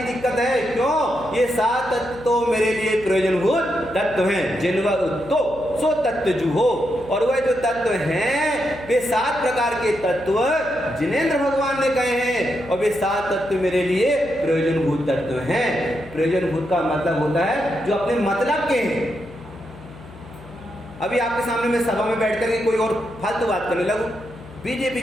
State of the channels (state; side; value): noise; left; hum, 19 dB below the sound